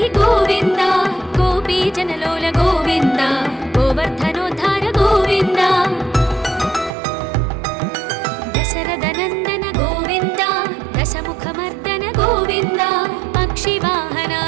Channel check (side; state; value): left; drops out; at 6.9 s